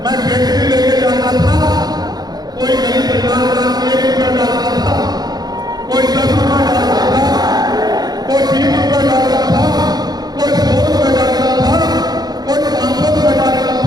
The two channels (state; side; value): late; left; 0.19 ms